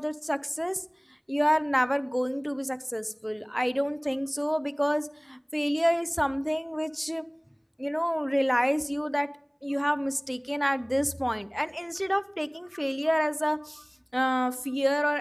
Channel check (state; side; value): identical; both; correlation 1.00